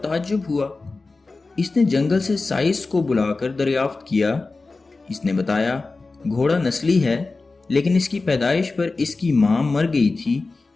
ہوا۔ اس نے جنگل سے سائس کو بلا کر دریافت کیا۔ اس نے بتایا گھوڑا نسلی ہے لیکن اس کی پیدائش پر اس کی ماں مر گئی تھی۔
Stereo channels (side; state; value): right; quieter; 3.7 dB